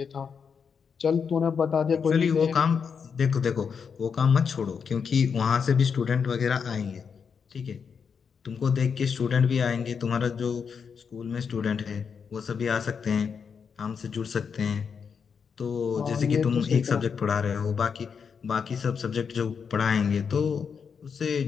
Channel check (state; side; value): quieter; right; 6.3 dB